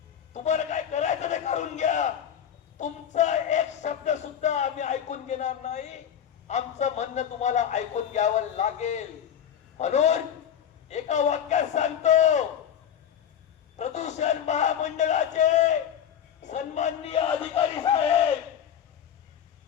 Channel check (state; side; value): quieter; right; 9.0 dB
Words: तुम्हाला काय करायचं ते करून घ्या. तुमचा एक शब्द सुद्धा आम्ही ऐकून घेणार नाही. आमचं म्हणणं तुम्हाला ऐकून घ्यावं लागेल. म्हणून एका वाक्यात सांगतो, प्रदूषण महामंडळाचे सन्माननीय अधिकारी साहेब,